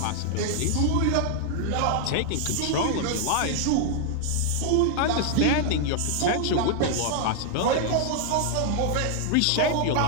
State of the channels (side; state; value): both; different; correlation 0.00